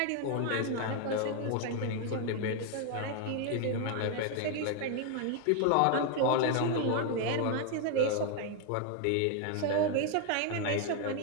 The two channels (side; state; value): both; different; correlation 0.01